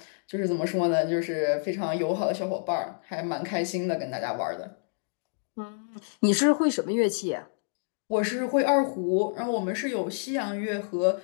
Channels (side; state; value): right; silent; digital silence